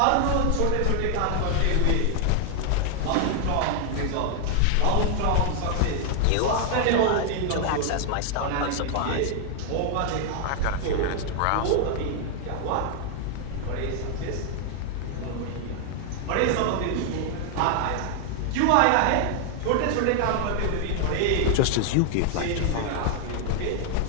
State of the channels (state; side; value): different; both; correlation 0.00